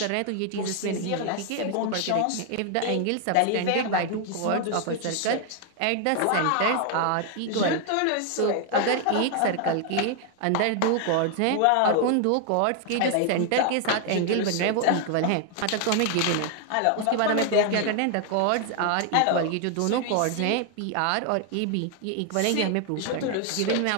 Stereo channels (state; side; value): different; both; correlation 0.00